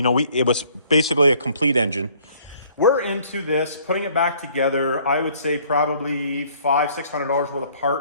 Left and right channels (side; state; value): both; inverted; correlation -0.59